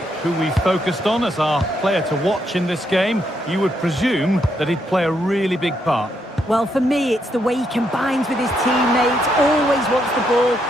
who we focused on as our player to watch in this game. You would presume that he'd play a really big part. Well, for me, it's the way he combines with his teammates, always wants the ball.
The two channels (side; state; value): both; normal; correlation 0.77